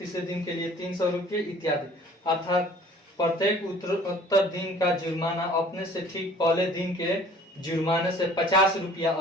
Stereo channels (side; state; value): both; normal; correlation 0.51